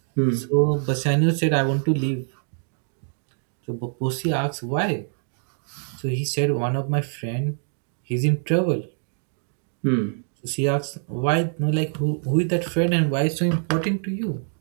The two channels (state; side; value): silent; left; 60 dB below the other